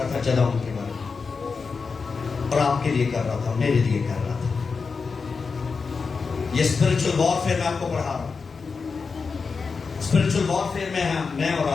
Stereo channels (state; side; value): quieter; right; 4.9 dB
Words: تھا جدعون کے بارے میں، اور آپ کے لیے کر رہا تھا، میرے لیے کر رہا تھا. یہ اسپرچل وارفیئر میں آپ کو پڑھا رہا ہوں. اسپرچل وارفیئر میں اور